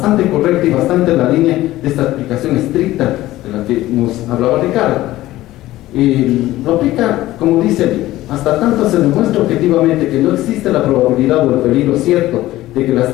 correcta y bastante en la línea de esta aplicación estricta de la que nos hablaba Ricardo. Lo aplica, como dice, hasta tanto se demuestra objetivamente que no existe la probabilidad o el peligro cierto de que las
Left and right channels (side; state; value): right; quieter; 16.1 dB